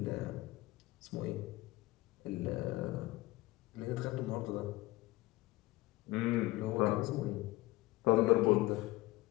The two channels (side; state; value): right; quieter; 19.0 dB